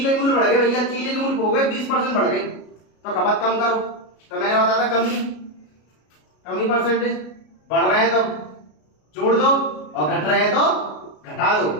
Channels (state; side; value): late; right; 33 ms